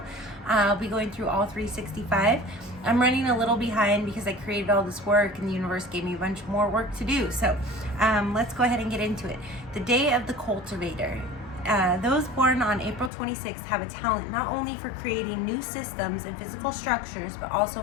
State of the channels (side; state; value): right; drops out; at 13.1 s